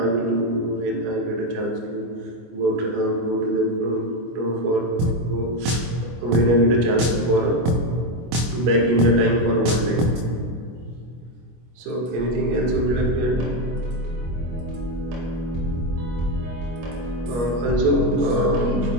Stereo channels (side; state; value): left; late; 24 ms